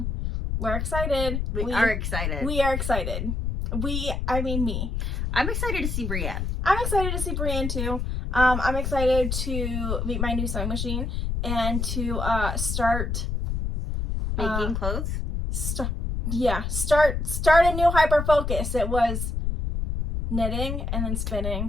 We're excited. We are excited. We are excited. I mean me. I'm excited to see Brienne. I'm excited to see Brienne, too. I'm excited to meet my new sewing machine and to start making clothes. Start a new hyper focus. It was knitting and then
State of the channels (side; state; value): left; noise; rumble, 2 dB below the sound